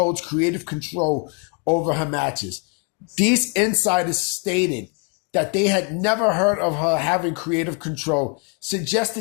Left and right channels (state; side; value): quieter; right; 35.6 dB